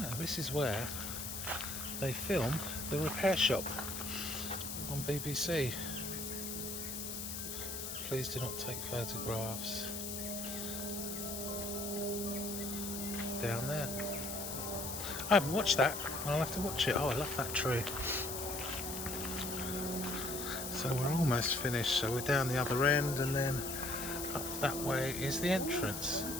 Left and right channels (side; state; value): left; noise; hiss, 5 dB below the sound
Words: This is where they film The Repair Shop on BBC. Please do not take photographs. Down there. I haven't watched that. I'll have to watch it. Oh, I love that tree. So we're almost finished. So we're down the other end, and then up that way is the entrance.